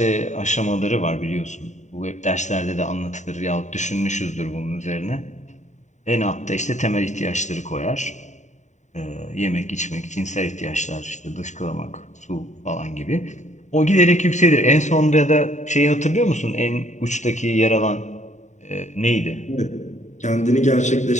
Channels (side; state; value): right; late; 0.34 ms